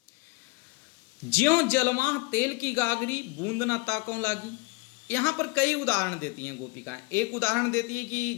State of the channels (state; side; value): quieter; right; 27.0 dB